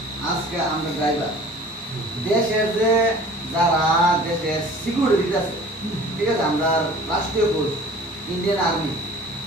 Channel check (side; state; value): both; normal; correlation 0.46